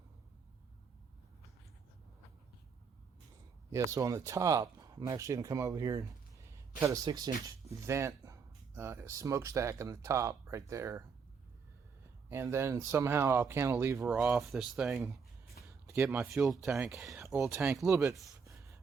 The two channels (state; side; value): quieter; left; 5.8 dB